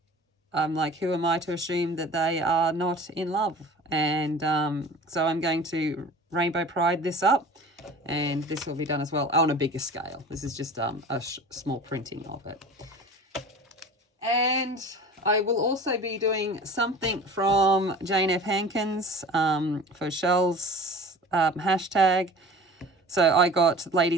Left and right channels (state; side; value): normal; both; correlation 0.40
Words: I'm like, who am I to assume that they are not in love? And so I'm going to rainbow pride this up, and this will be done as well on a bigger scale. This is just a small printing of it. And I will also be doing something from Jane F. Hankins for Shell's hashtag. So I got